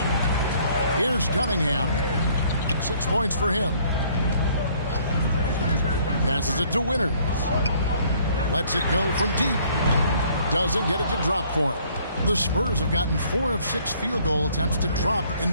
Here's Cunningham. 6 points for him. Passes it to Winters. Lets it go from deep. Doesn't get it to drop for him. The Spurs have gotten 4 of 6 field goal attempts to drop in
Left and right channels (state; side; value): inverted; both; correlation -0.61